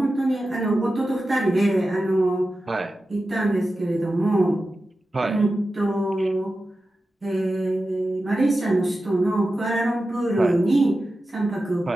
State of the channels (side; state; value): both; normal; correlation 0.93